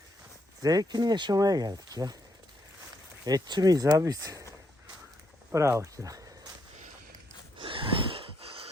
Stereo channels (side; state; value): both; normal; correlation 0.77